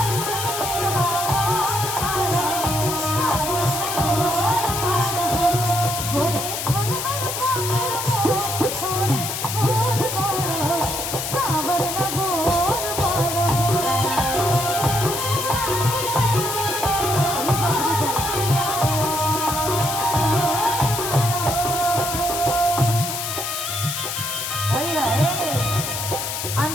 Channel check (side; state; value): left; noise; hiss, 4 dB below the sound